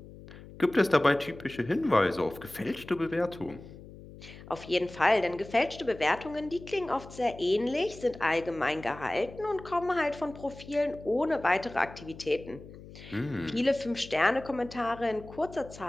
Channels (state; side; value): noise; left; hum, 17 dB below the sound